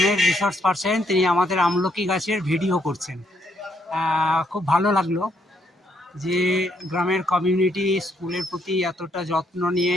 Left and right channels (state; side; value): normal; both; correlation 0.73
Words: রিসোর্স পার্সন তিনি আমাদের আমলকি গাছের ভিডিও করছেন। খুব ভালো লাগলো যে গ্রামের কমিউনিটি স্কুলের প্রতি এতটা যত্ন নিয়ে